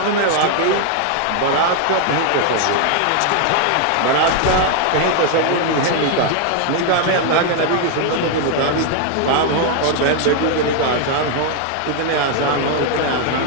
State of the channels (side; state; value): both; different; correlation 0.00